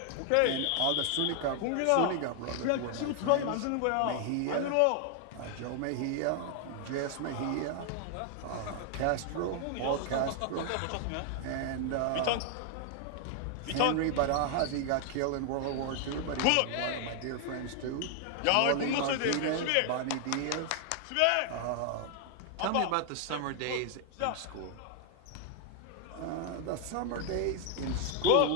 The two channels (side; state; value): both; different; correlation 0.00